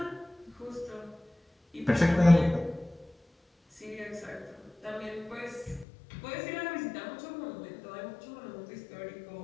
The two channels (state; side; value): drops out; right; at 5.9 s